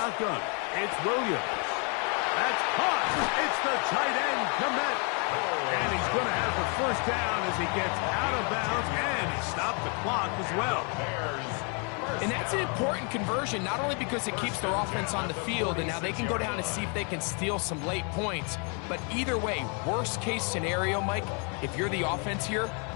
it's Williams. That's caught. It's the tight end commit. And he's going to have the first down as he gets out of bounds, and he stopped the clock as well. And that's an important conversion, not only because it keeps their offense on the field, and now they can go down and see if they can steal some late points. But either way, worst case scenario, Mike, if you're the offense here,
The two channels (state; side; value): quieter; right; 36.4 dB